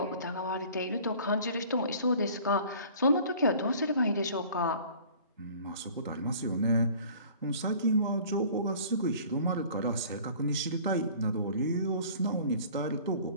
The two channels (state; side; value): inverted; both; correlation -0.49